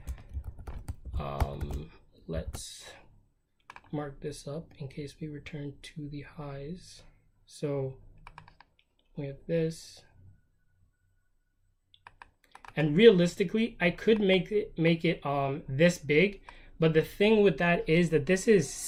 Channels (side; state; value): both; identical; correlation 1.00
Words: Let's mark this up in case we return to the highs. So we have this. And realistically, I could make it this big, but the thing with that is that this is